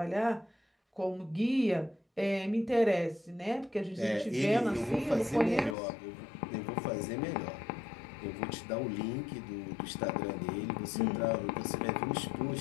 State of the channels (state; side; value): drops out; right; at 5.8 s